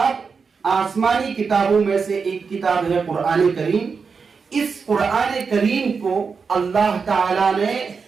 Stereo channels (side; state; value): left; quieter; 5.3 dB